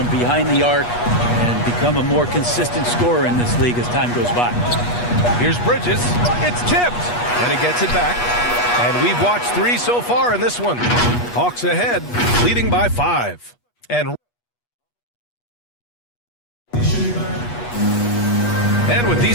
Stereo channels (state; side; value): late; right; 8.3 ms